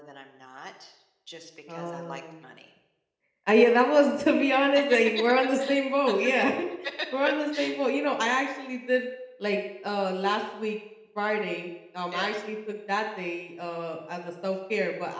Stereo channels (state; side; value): identical; both; correlation 1.00